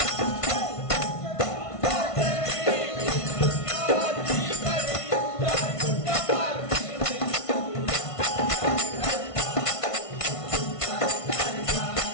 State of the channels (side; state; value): right; late; 1.5 ms